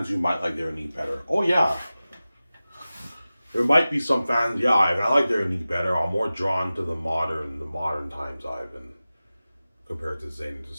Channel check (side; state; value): both; inverted; correlation -0.96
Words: who might like their knee better? Oh yeah, there might be some fans. Yeah, I like their knee better. I'm more drawn to the modern times Ivan compared to Zayn. To